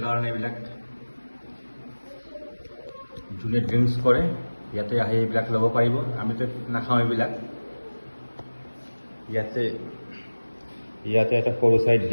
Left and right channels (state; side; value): inverted; both; correlation -1.00